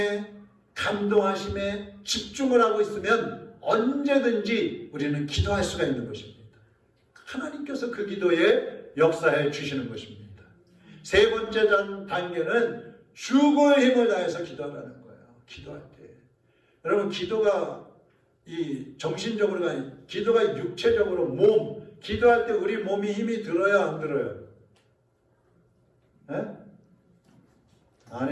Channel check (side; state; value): both; identical; correlation 1.00